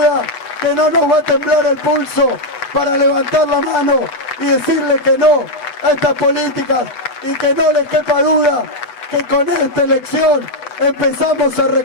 que no nos va a temblar el pulso para levantar la mano y decirle que no a estas políticas, y que no le quepa duda que con esta elección empezamos a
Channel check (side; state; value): right; late; 8.1 ms